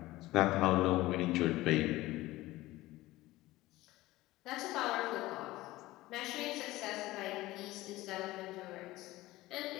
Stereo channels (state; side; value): quieter; right; 18.0 dB